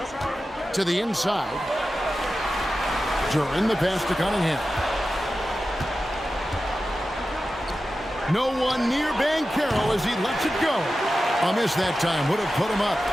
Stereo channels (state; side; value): normal; both; correlation 0.93